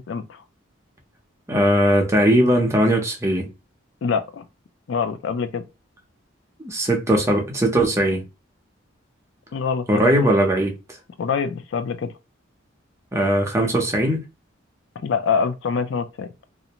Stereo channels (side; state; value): both; normal; correlation 0.54